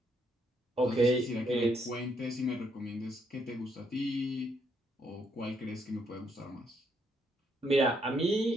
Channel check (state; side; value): normal; both; correlation 0.73